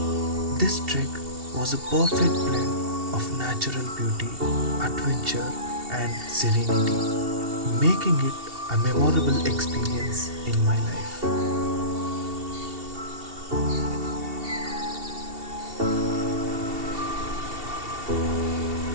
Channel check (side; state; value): left; late; 2.7 ms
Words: This trek was a perfect blend of natural beauty, adventure, and serenity, making it a memorable experience in my life.